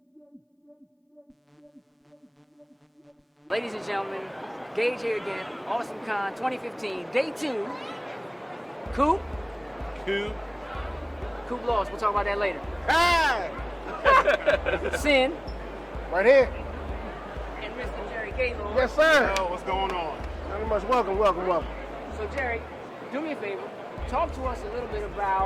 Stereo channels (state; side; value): identical; both; correlation 1.00